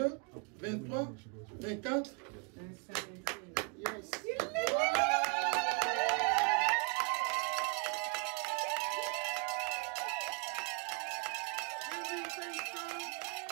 23, 24, 25. Yes.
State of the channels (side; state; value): left; quieter; 34.5 dB